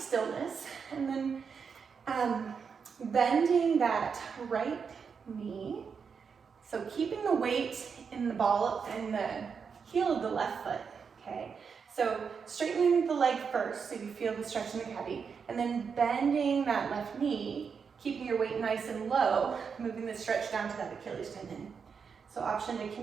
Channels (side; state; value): left; quieter; 6.1 dB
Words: and then bending that right knee. So keeping the weight in the ball and the heel of the left foot, okay? So straightening the leg first so you feel the stretch in the calf, and then bending that left knee, keeping your weight nice and low, moving the stretch down to that Achilles tendon. So option to